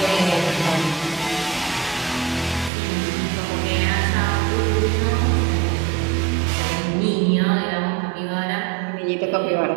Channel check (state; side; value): drops out; left; at 2.7 s